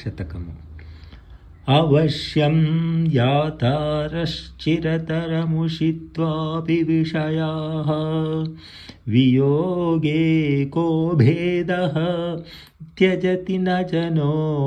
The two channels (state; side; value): identical; both; correlation 1.00